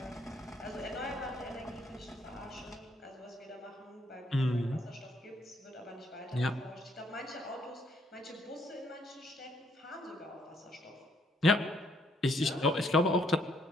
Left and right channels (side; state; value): both; normal; correlation 0.70